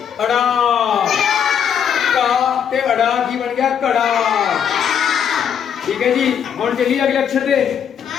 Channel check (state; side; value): quieter; right; 8.2 dB